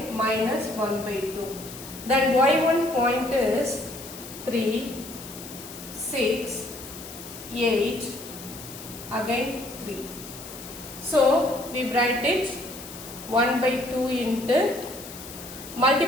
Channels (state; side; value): noise; left; hiss, 13 dB below the sound